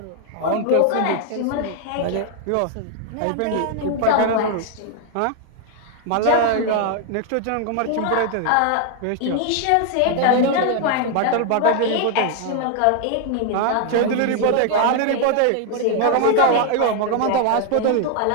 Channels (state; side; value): different; both; correlation 0.00